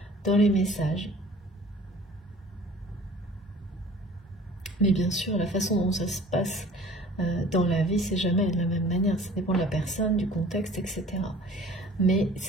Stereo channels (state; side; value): normal; both; correlation 0.48